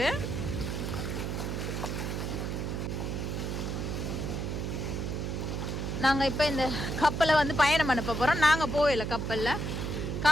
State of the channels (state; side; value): noise; right; hum, 2 dB below the sound